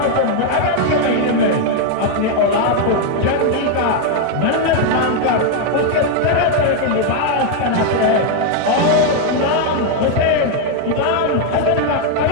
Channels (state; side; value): different; both; correlation 0.01